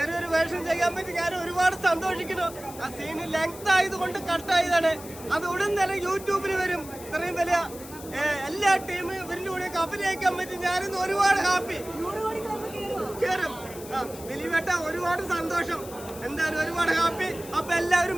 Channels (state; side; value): noise; left; hiss, 16 dB below the sound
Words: വേഷം ചെയ്യാൻ പറ്റി ഞാൻ ഒരുപാട് സന്തോഷിക്കുന്നു. ആ സീന് ലെങ്ത് ആയതുകൊണ്ട് കട്ടായതാണ്. അത് ഉടൻ തന്നെ യൂട്യൂബിൽ വരും. ഇത്രയും വലിയ എല്ലാ ടീമും ഇവരിന്റെ കൂടെ അഭിനയിക്കാൻ പറ്റി ഞാനിന്ന് ഒരുപാട് ഹാപ്പി. കയറും ദിലീപേട്ട, ഒരുപാട് സന്തോഷം. എന്തായാലും ഒരുപാട് ഹാപ്പി. അപ്പൊ എല്ലാവരും